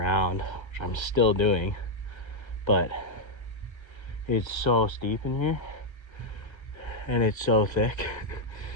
which I'm still doing, but it's so steep in here and it's so thick.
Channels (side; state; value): right; late; 1.3 ms